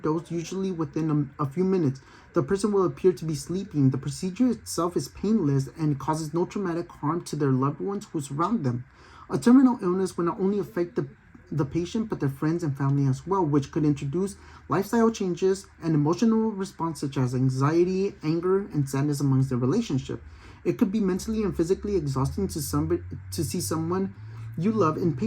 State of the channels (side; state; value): both; identical; correlation 1.00